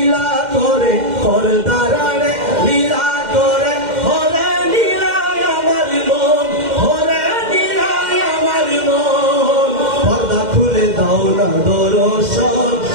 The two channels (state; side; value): late; left; 2.1 ms